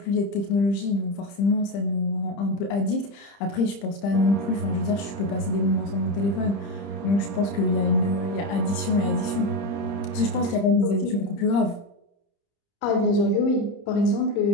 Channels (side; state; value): right; late; 30 ms